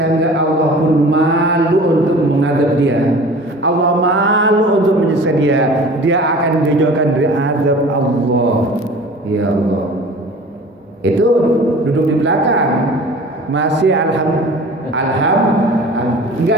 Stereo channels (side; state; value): both; normal; correlation 0.42